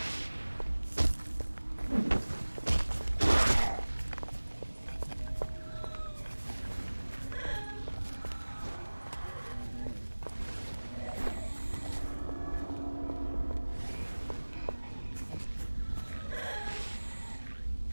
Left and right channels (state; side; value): inverted; both; correlation -1.00